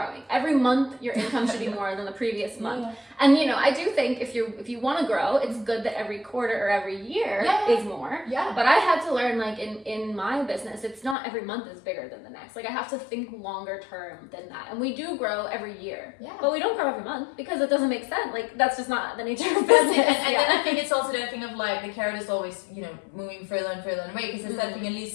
Every month your income should be more than the previous month. Yeah. And I do think if you want to grow, it's good that every quarter or every year is more. Yeah. But I had to learn, like in my business, it's not every month is bigger than the next. Like I have to think longer term than that. And we do grow every year. Yeah. But we don't grow every month because it doesn't make sense. Like that's just not the nature of business. And then I think it's also that thing of like the carrot is always, moving further and further away, because it's that thing, at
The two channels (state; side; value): drops out; right; at 11.2 s